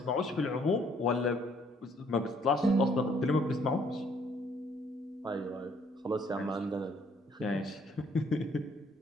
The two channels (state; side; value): normal; both; correlation 0.64